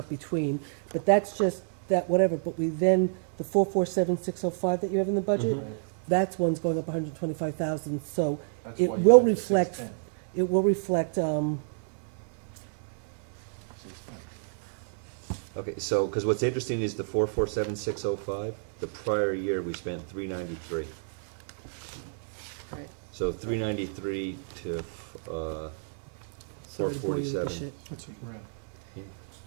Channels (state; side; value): silent; left; digital silence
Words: between, but that's just, that whatever, but we then, the 447,605 that you have in the budget, Mm-hmm. that's one's going up 125,000, so That's it why you will have the reflect, 610. it will reflect, 610. Okay, so, because what's interesting is the 447,605, the prior year, we spent 393. Right. So 393 to, sorry to bore you with this 447. shit. That's a grand. Yeah.